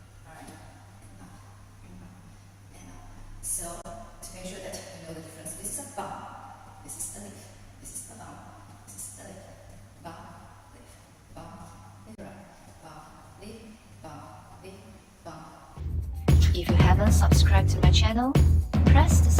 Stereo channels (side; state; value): both; identical; correlation 1.00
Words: Alright? Up and up and up. So to make sure that you know the difference, this is a bump. This is a lift. This is a bump. This is a lift. Bump, lift, bump, lift, bump, lift, bump, lift, bump. If you haven't subscribed to my channel, press the